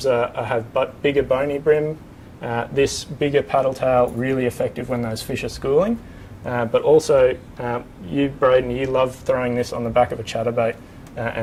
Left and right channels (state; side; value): identical; both; correlation 1.00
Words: have bigger bony brim. This bigger paddle tail really effective when those fish are schooling. But also, you, Braden, you love throwing this on the back of a chatterbait